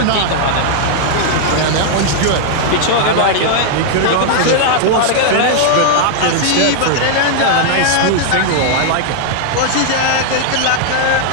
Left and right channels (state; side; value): different; both; correlation -0.01